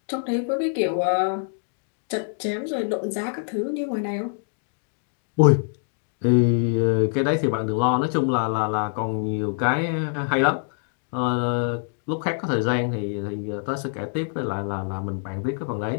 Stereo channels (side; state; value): right; silent; digital silence